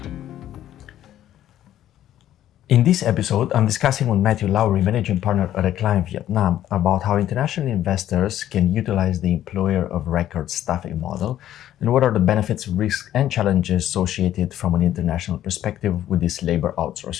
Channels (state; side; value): quieter; right; 12.2 dB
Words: In this episode, I'm discussing with Matthew Lowry, managing partner at a client Vietnam, about how international investors can utilize the employer of record staffing model and what are the benefits, risks, and challenges associated from an international perspective with this labor